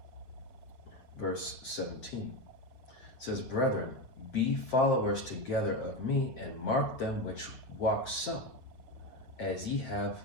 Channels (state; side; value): late; right; 7.7 ms